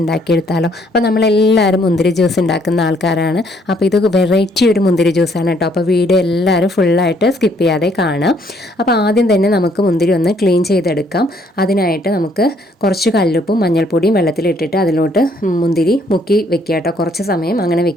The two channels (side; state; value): both; normal; correlation 0.66